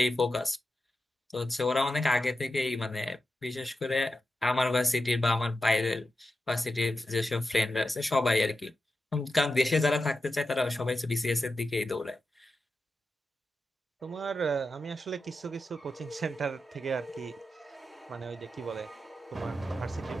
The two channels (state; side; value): normal; both; correlation 0.90